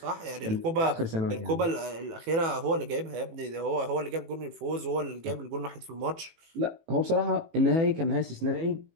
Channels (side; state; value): left; late; 18 ms